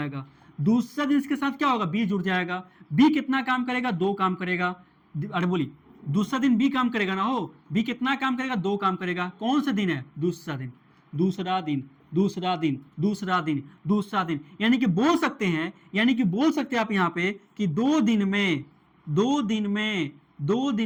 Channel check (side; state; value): both; identical; correlation 1.00